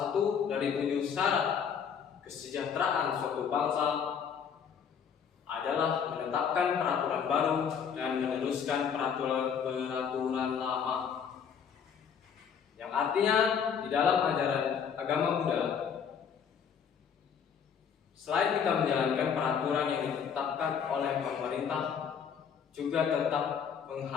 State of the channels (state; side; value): quieter; right; 7.3 dB